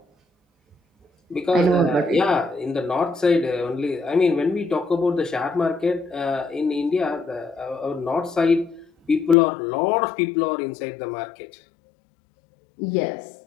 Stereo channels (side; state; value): right; drops out; at 9.3 s